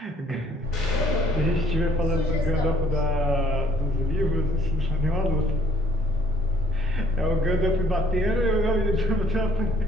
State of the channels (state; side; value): normal; both; correlation 0.60